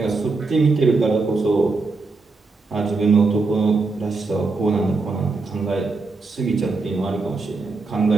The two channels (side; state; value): left; quieter; 3.9 dB